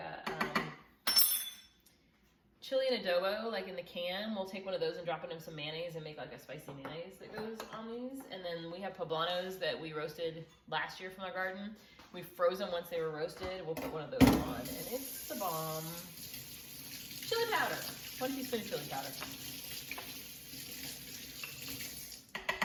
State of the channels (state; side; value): identical; both; correlation 1.00